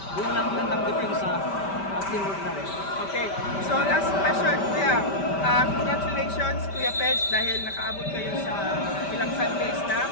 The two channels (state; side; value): late; right; 5.1 ms